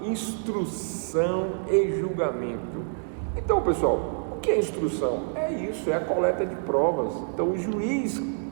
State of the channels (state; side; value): silent; left; digital silence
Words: instrução e julgamento. Então, pessoal, o que é instrução? É isso, é a coleta de provas. Então, o juiz,